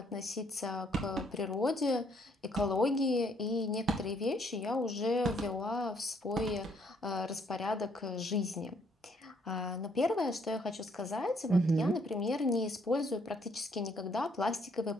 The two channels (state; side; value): normal; both; correlation 0.67